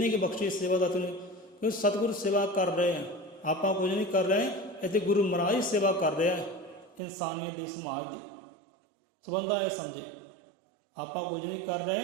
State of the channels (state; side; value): drops out; left; at 7.0 s